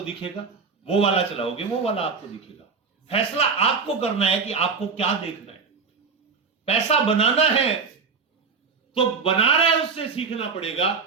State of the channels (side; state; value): left; quieter; 5.2 dB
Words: दिखेगा, वो वाला चलाओगे वो वाला आपको दिखेगा। फैसला आपको करना है कि आपको क्या देखना है। पैसा बनाना है तो बना रहा है उससे सीखना पड़ेगा,